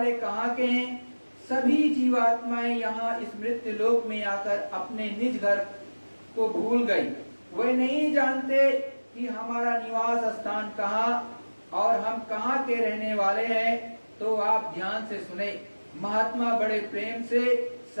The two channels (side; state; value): both; inverted; correlation -1.00